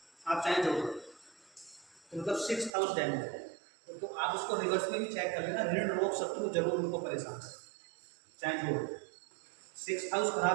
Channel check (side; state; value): left; drops out; at 2.7 s